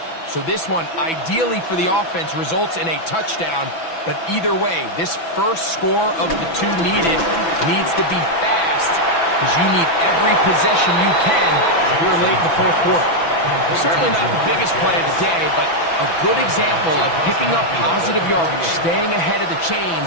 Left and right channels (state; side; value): late; right; 6.0 ms